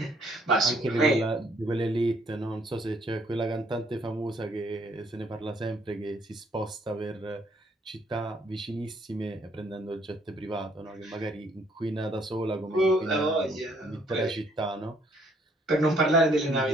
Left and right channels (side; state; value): both; normal; correlation 0.65